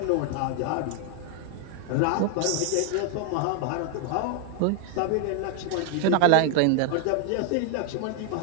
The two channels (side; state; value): both; different; correlation 0.00